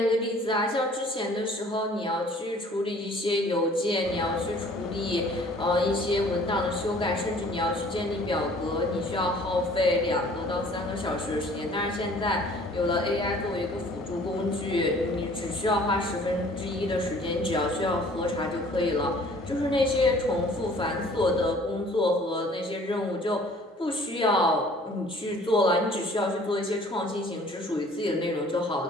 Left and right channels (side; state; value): both; normal; correlation 0.53